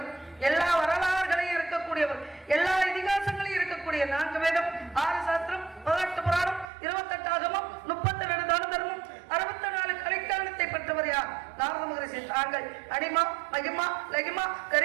எல்லா வரலாறுகளையும் இருக்கக்கூடியவர், எல்லா இதிகாசங்களையும் இருக்கக்கூடிய 4 வேதம், 6 சாஸ்திரம், 18 புராணம், 28 ஆகமம், 32 தான தர்மம், 64 கலைக்காலத்தை பெற்றவர் யார்? நாரத மகரிஷி. தாங்கள் அனிமா, மகிமா, லகிமா,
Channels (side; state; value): left; drops out; at 6.7 s